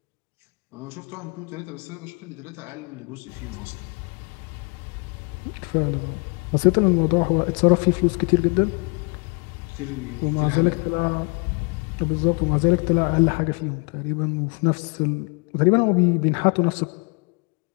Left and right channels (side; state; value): right; quieter; 34.3 dB